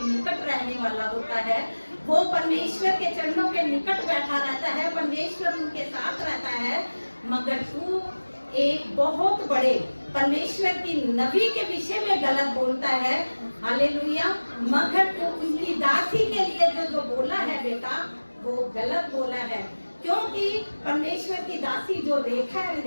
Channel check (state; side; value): inverted; both; correlation -1.00